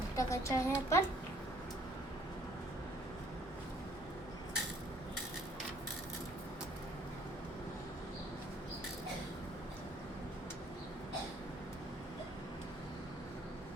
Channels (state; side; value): normal; both; correlation 0.61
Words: टाकायची आहे आपण.